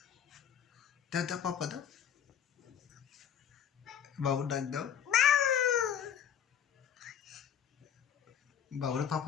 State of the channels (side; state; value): right; quieter; 9.0 dB